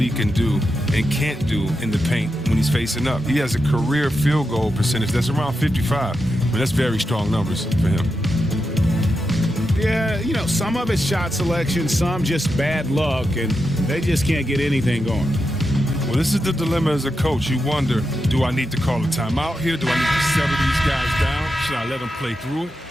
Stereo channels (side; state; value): both; normal; correlation 0.87